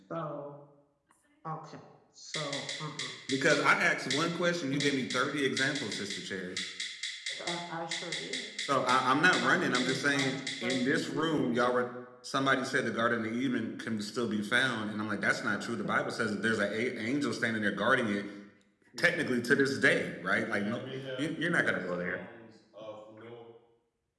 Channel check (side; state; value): both; identical; correlation 1.00